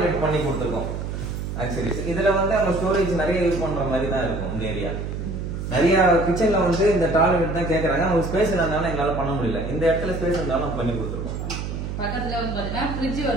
பண்ணி கொடுத்துருக்கோம். ஆக்சுவலி இதுல வந்து நம்ம ஸ்டோரேஜ் நிறைய யூஸ் பண்ற மாதிரி தான் இருக்கும். இந்த ஏரியா நிறைய கிச்சன்ல வந்து இந்த டாய்லெட் தான் கேக்குறாங்க. அவங்க ஸ்பேஸ் இல்லாதனால எங்களால பண்ண முடியல. இந்த இடத்துல ஸ்பேஸ் இருந்தாலும் நம்ம பண்ணி கொடுத்துருக்கோம். பக்கத்துல வந்து பாத்தீங்கன்னா ஃப்ரிட்ஜ்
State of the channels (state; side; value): noise; right; hum, 5 dB below the sound